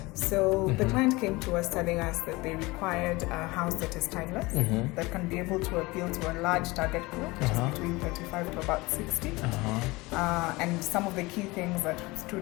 So the client came to us telling us that they required a house that is timeless, that can be able to appeal to a large target group, which is between 35 to about 60. And some of the key things that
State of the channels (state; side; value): quieter; right; 22.5 dB